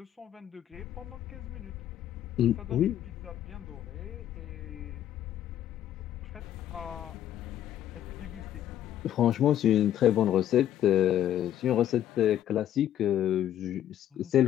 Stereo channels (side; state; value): right; quieter; 11.4 dB